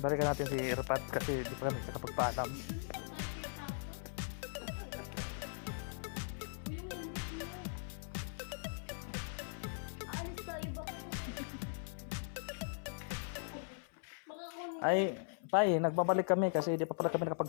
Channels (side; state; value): right; silent; 51 dB below the other